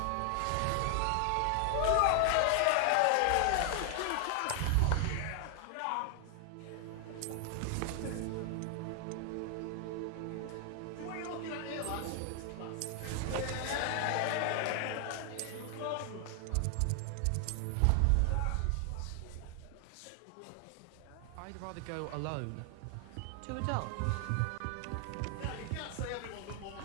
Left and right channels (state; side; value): different; both; correlation 0.00